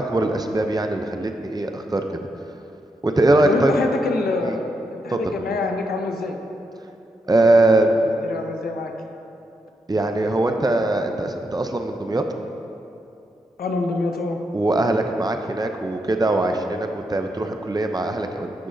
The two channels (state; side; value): normal; both; correlation 0.82